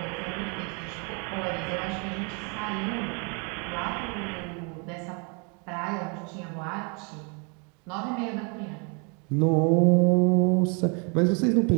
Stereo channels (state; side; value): quieter; left; 35.1 dB